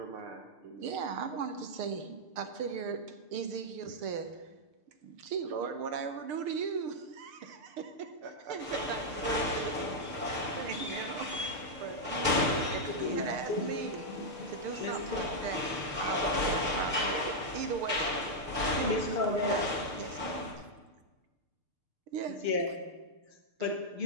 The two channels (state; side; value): late; left; 6.7 ms